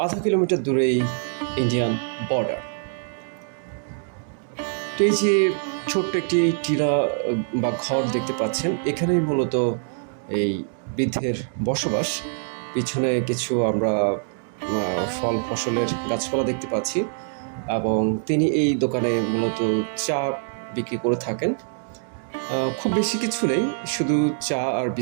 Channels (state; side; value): silent; left; digital silence